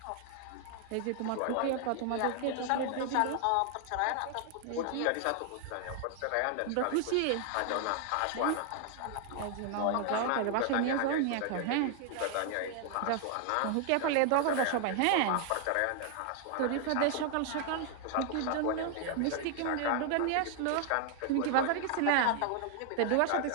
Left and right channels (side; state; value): both; different; correlation 0.00